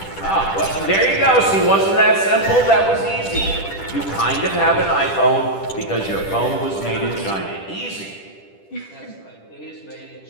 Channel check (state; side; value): late; right; 10 ms